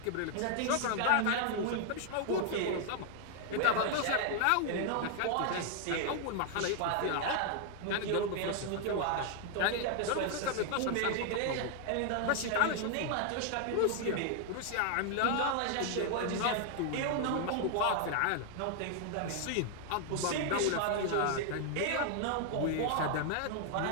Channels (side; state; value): both; different; correlation 0.00